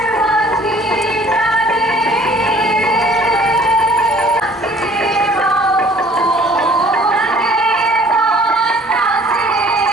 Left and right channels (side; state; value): both; normal; correlation 0.54